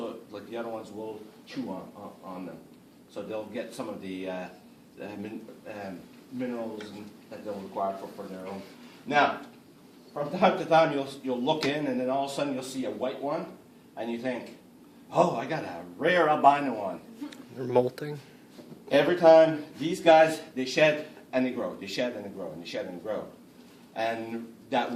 like the other ones, will chew on them. So they'll get some of the minerals that they'll require for their own. Now, from time to time, you'll look in, and then all of a sudden you'll see a white one, and you think, oh, I got a rare albino one. They're molting. Every time, these guys, they shed and they grow. They shed and they grow, and they shed and they grow. And that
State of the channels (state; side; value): identical; both; correlation 1.00